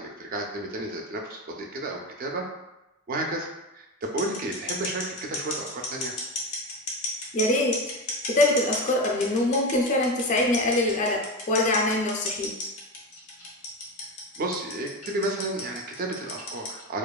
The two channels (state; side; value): normal; both; correlation 0.19